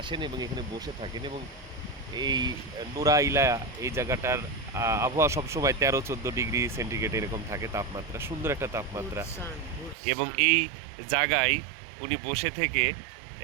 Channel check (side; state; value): left; drops out; at 10.0 s